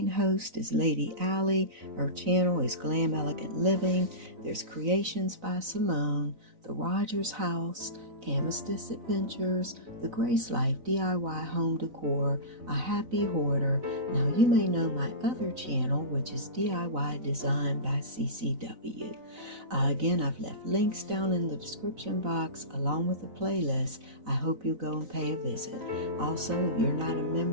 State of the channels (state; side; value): late; left; 4.0 ms